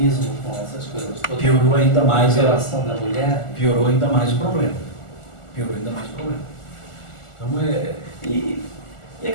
com essas coisas todas. Piorou ainda mais a relação da mulher. Piorou ainda mais o problema. Então, e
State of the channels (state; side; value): late; right; 1.4 ms